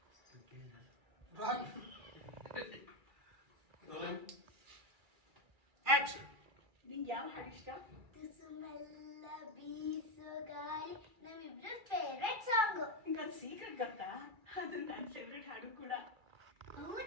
ನಿಂಗೆ ಯಾವ ಹಾಡು ಇಷ್ಟ? ತುಸುಮೆಲ್ಲ ಬೀಸೋ ಗಾಳಿ ನಮ್ಮಿಬ್ರು ಫೇವ್ರೆಟ್ ಸಾಂಗ್. ನಿಂಗೊಂದು ಸೀಕ್ರೆಟ್ ಗೊತ್ತಾ? ಅದು ನನ್ನ ಫೇವ್ರೆಟ್ ಹಾಡು ಕೂಡ.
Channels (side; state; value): left; late; 2.3 ms